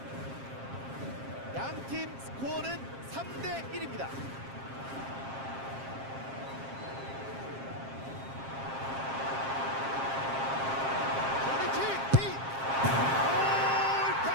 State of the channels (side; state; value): left; late; 7.5 ms